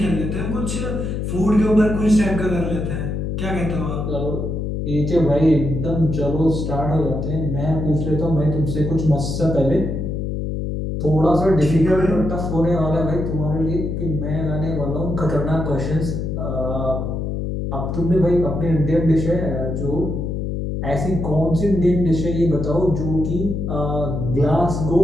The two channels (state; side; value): noise; left; hum, 3 dB below the sound